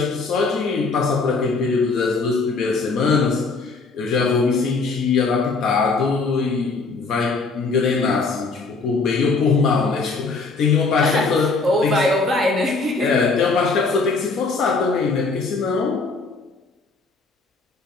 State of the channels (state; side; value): quieter; right; 4.0 dB